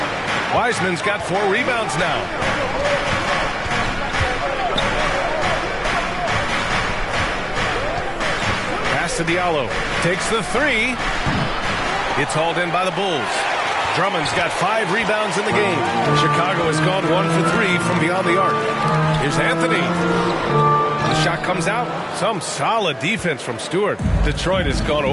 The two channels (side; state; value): both; identical; correlation 1.00